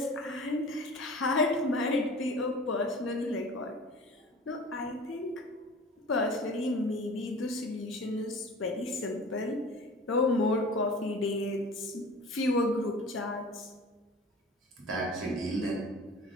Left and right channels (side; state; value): both; normal; correlation 0.41